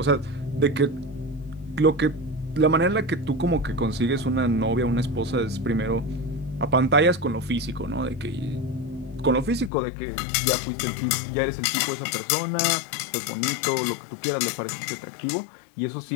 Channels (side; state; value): right; drops out; at 9.7 s